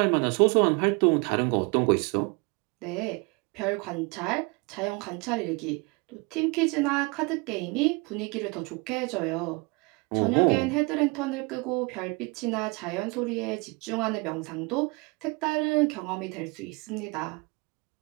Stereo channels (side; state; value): left; quieter; 28.5 dB